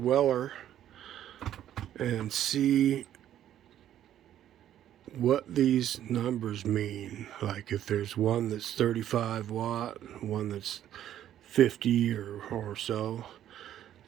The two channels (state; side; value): quieter; left; 11.3 dB